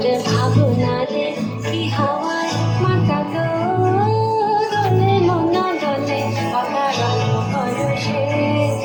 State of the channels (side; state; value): both; identical; correlation 1.00